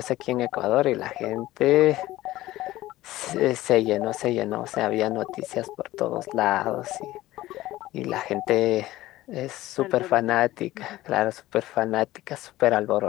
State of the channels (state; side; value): quieter; right; 16.4 dB